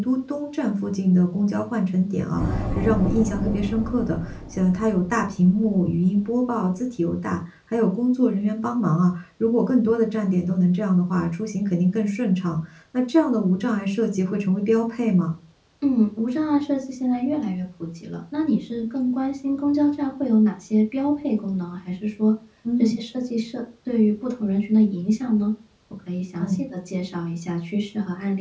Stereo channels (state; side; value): identical; both; correlation 1.00